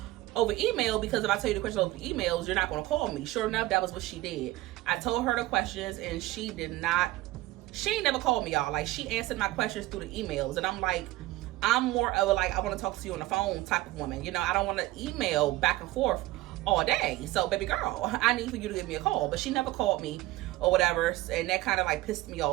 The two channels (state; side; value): quieter; left; 18.0 dB